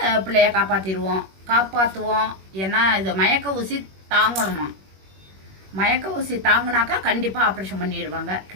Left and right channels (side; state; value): left; late; 21 ms